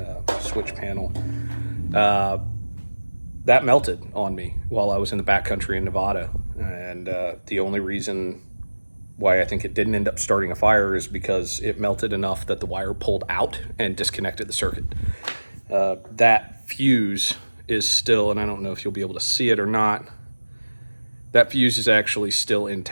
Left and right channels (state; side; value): inverted; both; correlation -1.00